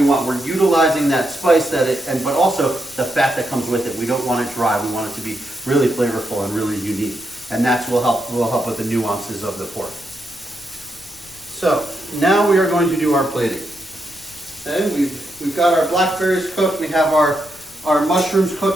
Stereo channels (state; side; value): noise; left; rumble, 25 dB below the sound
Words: want. We're utilizing that spice but also the fat that comes with it. We don't want it dry. We want it to be really flavorful and really unique. And that's will help with the nuances of the pork. So now we are going to do our plating. Okay, we've got our blackberries cooked. We have our mushrooms